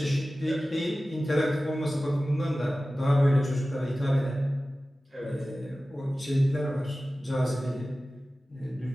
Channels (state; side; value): normal; both; correlation 0.96